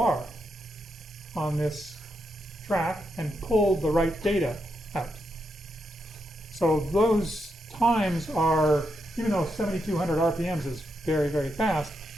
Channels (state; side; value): normal; both; correlation 0.83